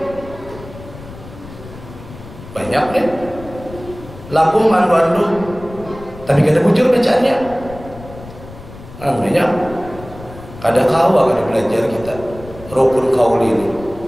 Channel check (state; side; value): noise; left; rumble, 16 dB below the sound